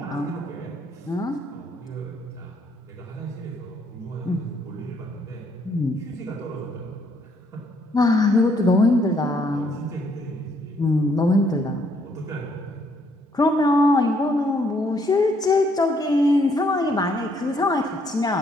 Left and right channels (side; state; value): both; normal; correlation 0.69